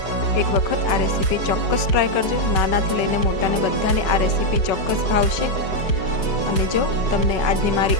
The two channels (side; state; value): right; late; 4.9 ms